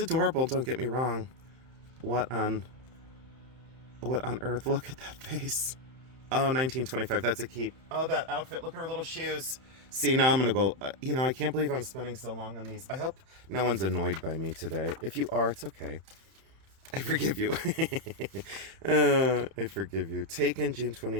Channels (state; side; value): late; left; 31 ms